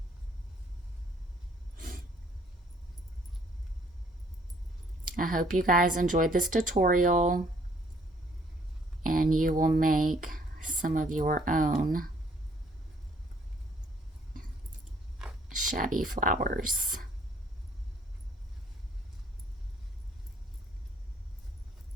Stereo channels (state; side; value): normal; both; correlation 0.62